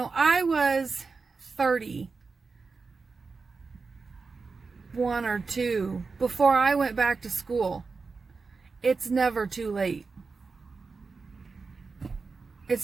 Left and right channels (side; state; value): left; quieter; 4.5 dB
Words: I was 31 or 2 before I went back to school. It's never too late.